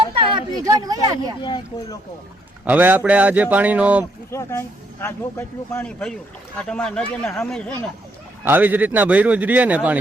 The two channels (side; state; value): both; normal; correlation 0.72